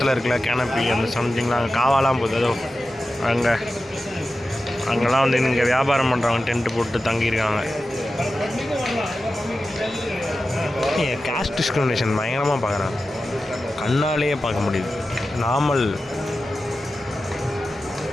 இருக்கல கேனப்பி அந்த சம்திங்லாம் அங்கே காவாலாம் போகுது. அதோ அங்கெல்லாம் வந்து இங்கே வியாபாரம் பண்ணுறவங்க டென்ட்டு போட்டு தங்கியிருக்காங்க. காஸ்ட் டிஸ்கிரிமினேஷன் பயங்கரமாக பார்க்குறாங்க, கண்ணாலேயே பார்க்க முடியுது. நார்மல்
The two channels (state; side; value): normal; both; correlation 0.93